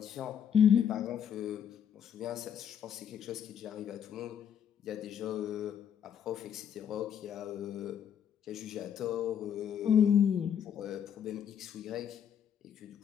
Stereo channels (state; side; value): quieter; right; 8.7 dB